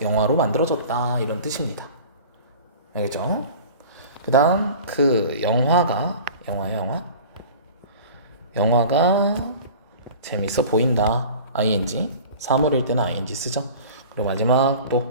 영화로 만들어졌다, 이런 뜻입니다. 알겠죠? 그 다음 그 영화가 재밌어 보인다. ing. 사물일 때는 ing 쓰죠. 그리고 마지막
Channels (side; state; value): both; inverted; correlation -0.40